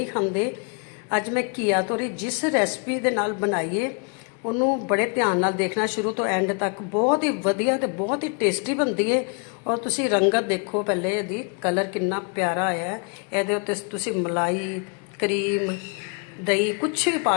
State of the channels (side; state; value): right; quieter; 37.1 dB